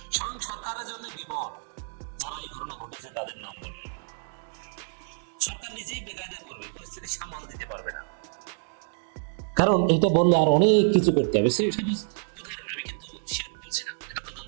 স্বয়ং সরকারের জন্য বিপদ, যারা এই ঘটনা ঘটেছে তাদের নাম বলবে, সরকার নিজেই বেকায়দা করবে, পরিস্থিতি সামাল দিতে পারবে না। কারণ এটা বললে আর অনেক কিছু করতে হবে। আমি কিন্তু শিওর বলছি না, এটা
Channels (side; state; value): left; silent; digital silence